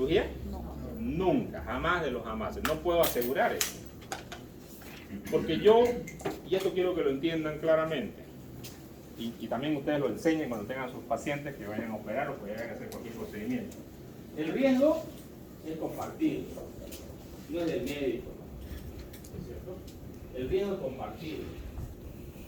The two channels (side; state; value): both; identical; correlation 1.00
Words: No. Nunca, jamás de los jamases. No puedo asegurar eso. Porque yo, y esto quiero que lo entiendan claramente, y también ustedes lo enseñen cuando tengan sus pacientes que vayan a operar o que vayan a hacer cualquier procedimiento. El riesgo es compartido, no es del médico, ¿no? ¿Es cierto? El riesgo es compartido.